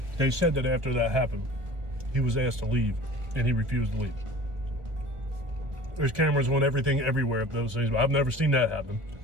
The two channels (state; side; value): late; left; 1.7 ms